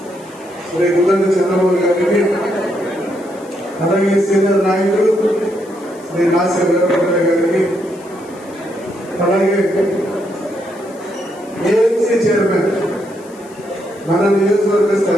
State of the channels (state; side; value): noise; left; hiss, 25 dB below the sound